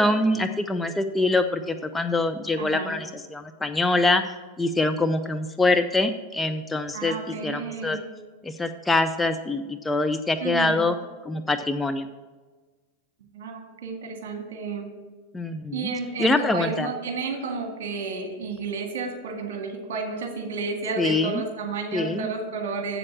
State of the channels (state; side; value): normal; both; correlation 0.62